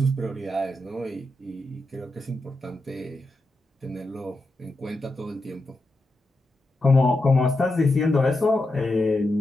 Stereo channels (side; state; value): both; normal; correlation 0.88